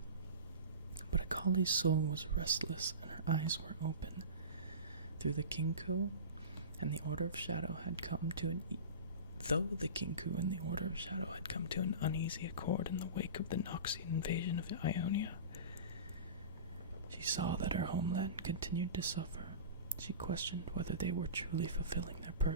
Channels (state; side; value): inverted; both; correlation -0.31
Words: But Akali's soul was restless and her eyes were open. Through the Kinku and the Order of Shadow had come to an uneasy accord in the wake of the Noxian invasion of Ionia, she saw that her homeland continued to suffer. She questioned whether they were truly fulfilling their